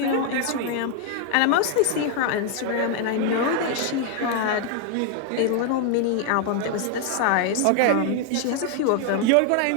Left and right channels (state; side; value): different; both; correlation 0.00